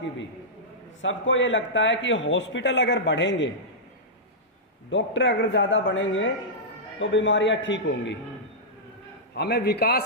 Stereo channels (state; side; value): normal; both; correlation -0.12